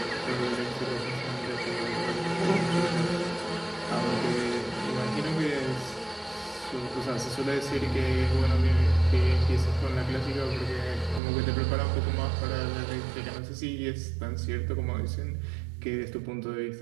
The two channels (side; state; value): left; drops out; at 11.2 s